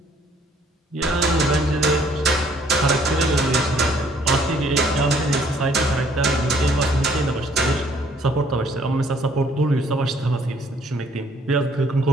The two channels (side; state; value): both; normal; correlation 0.62